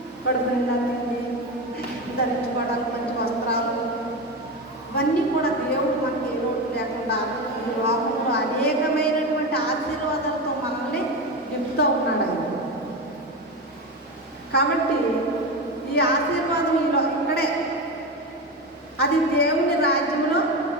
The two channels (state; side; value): normal; both; correlation 0.19